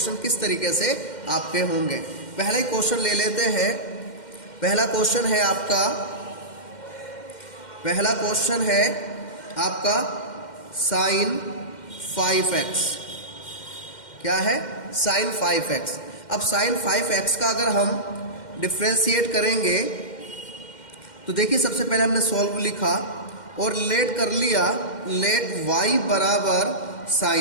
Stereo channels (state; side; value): late; right; 2.1 ms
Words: किस तरीके से आपके होंगे। पहला ही क्वेश्चन ले लेते हैं। पहला क्वेश्चन है आपका sin 5x। क्या है? sin 5x। अब sin 5x का अगर हम डिफ्रेंशिएट करेंगे तो देखिए, सबसे पहले हमने सॉल्व लिखा और लेट कर लिया, लेट y बराबर